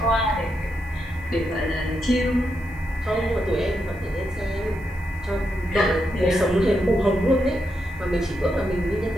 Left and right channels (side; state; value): left; noise; hiss, 29 dB below the sound